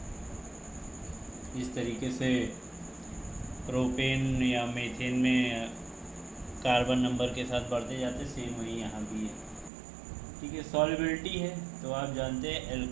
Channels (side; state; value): left; drops out; at 9.7 s